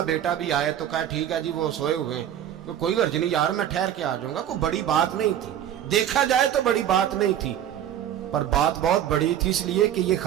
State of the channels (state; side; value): quieter; left; 10.6 dB